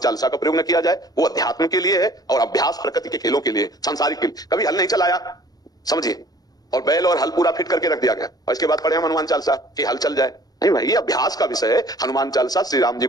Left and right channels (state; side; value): late; right; 0.19 ms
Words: का प्रयोग न किया जाए, वो अध्यात्म के लिए है और अभ्यास प्रकृति के खेलों के लिए, सांसारिक के लिए। कभी हल नहीं चलाया, समझिए, और बैल और हल पूरा फिट करके रख दिया गया और इसके बाद पढ़े हम हनुमान चालीसा कि हल चल जाए। नहीं भाई, ये अभ्यास का विषय है। हनुमान चालीसा श्री राम जी